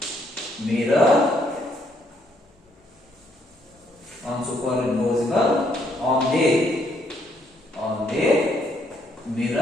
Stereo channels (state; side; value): normal; both; correlation 0.71